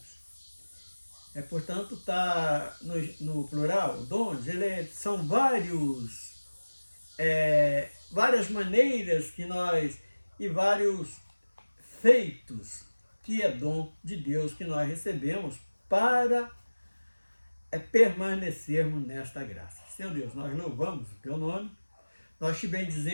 portanto, está no plural, dons, são várias maneiras que nós, e vários feitos, que é dom de Deus que nós recebemos para permanecermos nesta graça. Senhor Deus, nós louvamos o teu nome, nós te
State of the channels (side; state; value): both; inverted; correlation -1.00